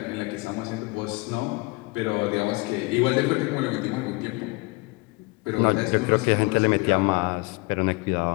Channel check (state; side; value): quieter; right; 25.6 dB